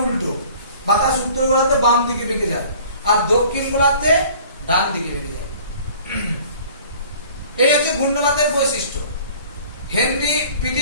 উল্টো, বাতাস উত্তর গোলার্ধে বাম দিকে বেঁকে যায় আর দক্ষিণ গোলার্ধে ডান দিকে বেঁকে যায়। এই হচ্ছে ঘূর্ণবাতের বৈশিষ্ট্য। হেনরি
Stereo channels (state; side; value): inverted; both; correlation -0.50